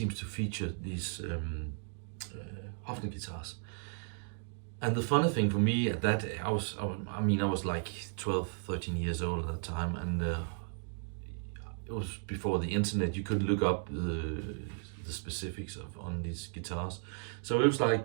to feature these Hofner guitars. And the funny thing for me at that, I was like 12, 13 years old at that time, and it was before the internet. You could look up the specifics on these guitars. So it was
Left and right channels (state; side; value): silent; left; 54 dB below the other